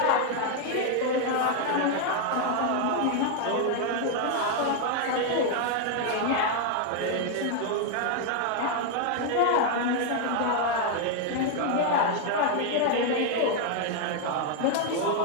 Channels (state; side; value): different; both; correlation 0.00